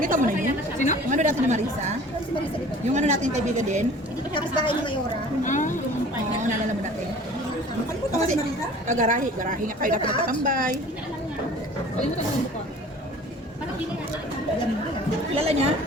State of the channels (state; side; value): normal; both; correlation 0.46